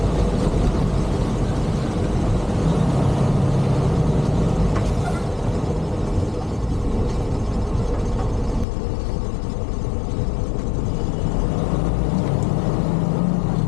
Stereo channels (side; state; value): right; drops out; at 8.7 s